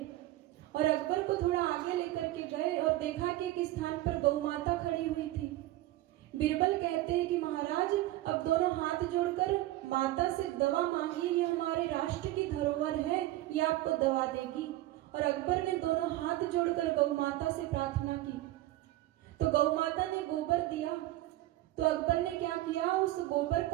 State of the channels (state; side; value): quieter; left; 16.3 dB